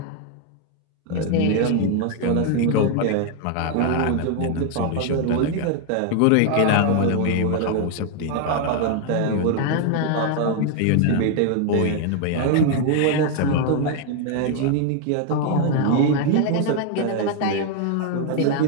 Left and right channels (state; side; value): different; both; correlation 0.00